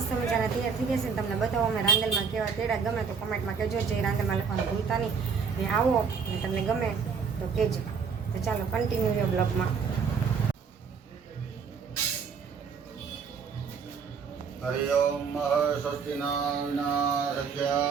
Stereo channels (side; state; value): left; quieter; 5.9 dB